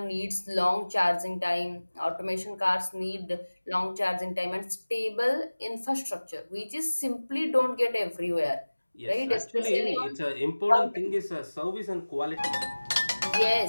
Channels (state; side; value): inverted; both; correlation -1.00